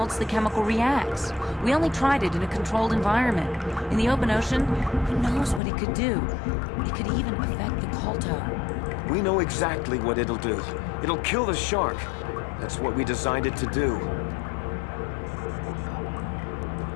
the chemical reacts. We only tried it in a controlled environment. In the open ocean, who knows what it could do? It could even affect the KotOR. We know exactly what it'll do. It'll kill the shark. That's what we designed it to do.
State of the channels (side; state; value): right; drops out; at 5.6 s